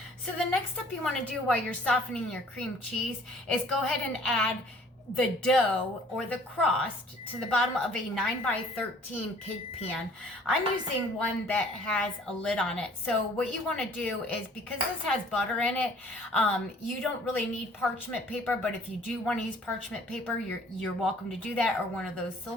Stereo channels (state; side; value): normal; both; correlation 0.55